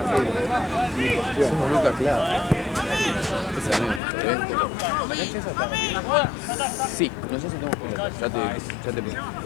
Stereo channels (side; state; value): right; drops out; at 4.0 s